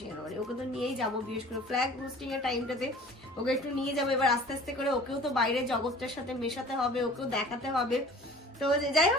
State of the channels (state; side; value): normal; both; correlation 0.46